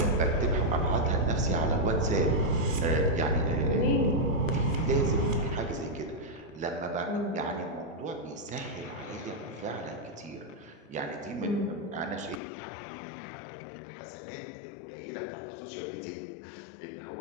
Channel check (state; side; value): drops out; right; at 12.4 s